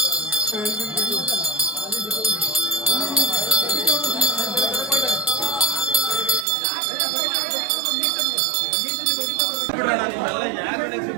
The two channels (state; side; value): drops out; left; at 6.5 s